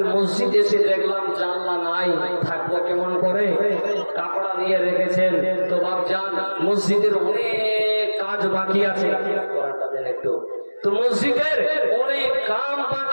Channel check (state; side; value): inverted; both; correlation -1.00